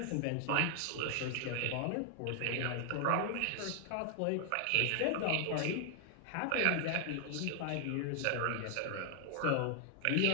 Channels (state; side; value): different; both; correlation 0.00